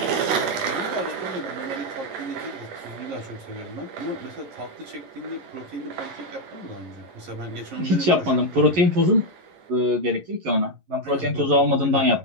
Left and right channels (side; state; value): left; late; 11 ms